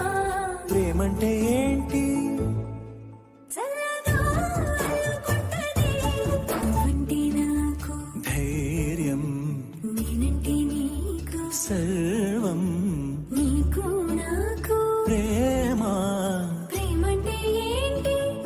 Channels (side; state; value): both; identical; correlation 1.00